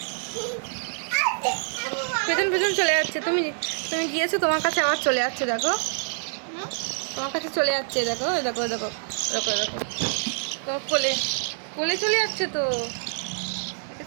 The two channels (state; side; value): silent; left; digital silence